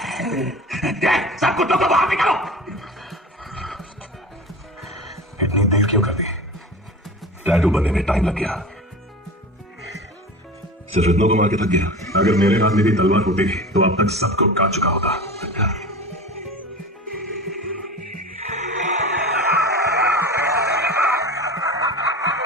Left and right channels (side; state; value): both; normal; correlation 0.33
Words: सब कुत्तों को बाहर निकालो। इतनी देर क्यों कर दी? टैटू बनने में टाइम लग गया। सिर्फ इतनों को मार के थक गया। अगर मेरे हाथ में भी तलवार होती तो अब तक सबको काट चुका होता।